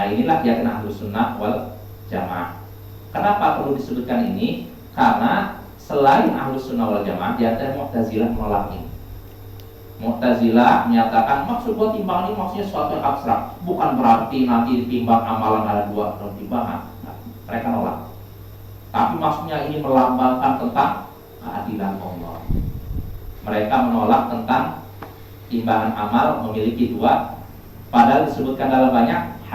inilah yang Ahlus Sunnah wal Jamaah. Kenapa perlu disebutkan ini? Karena selain Ahlus Sunnah wal Jamaah, di antara Mu'tazilah menolak ini. Mu'tazilah menyatakan maksud buat timbangan ini maksudnya sesuatu yang abstrak, bukan berarti nanti ditimbang amalan ada dua daun timbangan. Nah, mereka nolak. Tapi maksudnya ini melambangkan tentang keadilan Allah. Mereka menolak tentang timbangan amal memiliki dua, padahal disebutkan dalam banyak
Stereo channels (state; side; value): identical; both; correlation 1.00